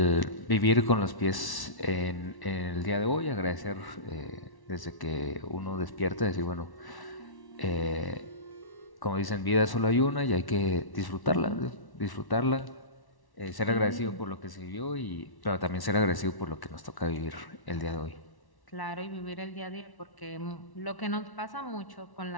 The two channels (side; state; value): right; late; 1.1 ms